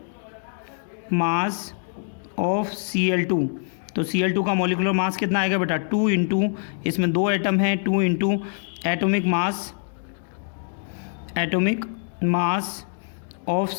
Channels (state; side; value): silent; right; 62 dB below the other